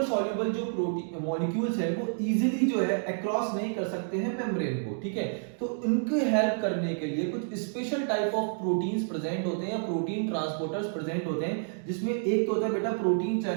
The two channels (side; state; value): left; silent; digital silence